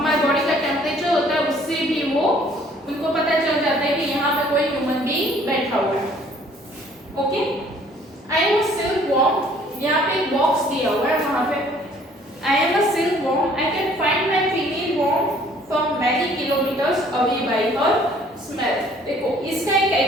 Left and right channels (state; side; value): normal; both; correlation 0.58